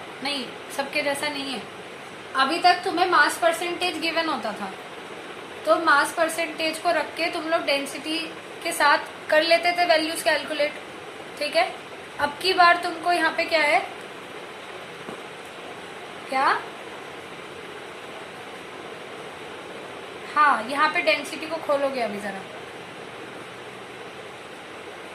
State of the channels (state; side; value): identical; both; correlation 1.00